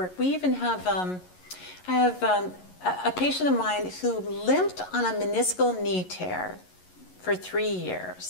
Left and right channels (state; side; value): late; right; 11 ms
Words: We even have, I have a patient of mine who limped on a meniscal knee tear for 3